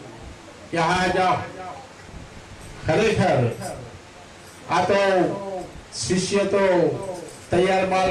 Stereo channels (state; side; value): identical; both; correlation 1.00